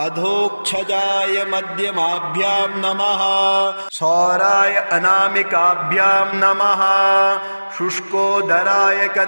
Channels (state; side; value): inverted; both; correlation -1.00